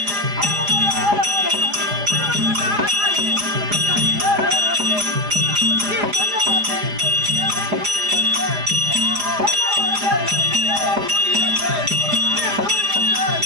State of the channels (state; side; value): late; left; 4.9 ms